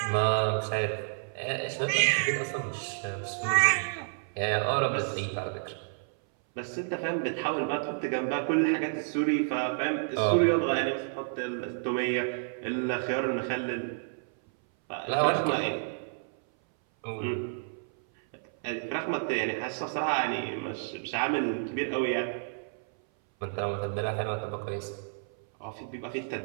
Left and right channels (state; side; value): silent; left; 58 dB below the other